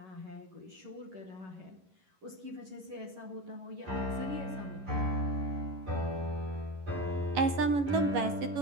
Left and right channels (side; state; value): left; late; 11 ms